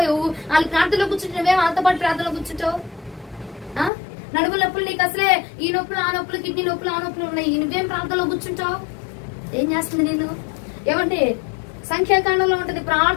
వాళ్ళు ప్రార్థనలో కూర్చుంటావే, వాళ్ళతో పాటు ప్రార్థనలో కూర్చుంటావు. నడుము నొప్పులు నీకు అసలే ఈ నొప్పులు ఆ నొప్పులు, కిడ్నీ నొప్పులు ఆ నొప్పులు ఉన్నాయి, నువ్వేం ప్రార్థనలో కూర్చుంటావు? ఏం చేస్తుంది నేను? ఏమంటే సంఖ్యాకాండంలో ఉంటది,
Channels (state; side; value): drops out; right; at 3.9 s